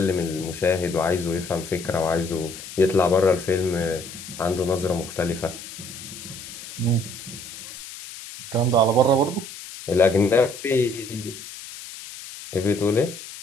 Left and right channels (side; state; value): left; noise; hiss, 13 dB below the sound